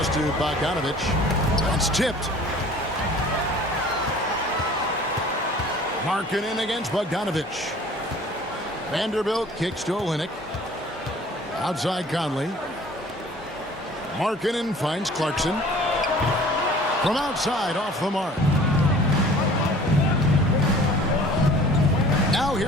to Bogdanovich. That's tipped. Markkanen against Bogdanovich. Vanderbilt kicks to Olynyk. Outside Conley. Markkanen finds Clarkson. From outside, off the mark. Now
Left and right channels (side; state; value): both; normal; correlation 0.49